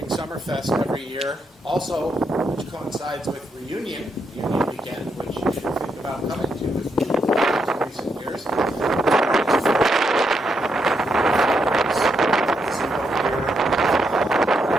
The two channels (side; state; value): both; normal; correlation 0.80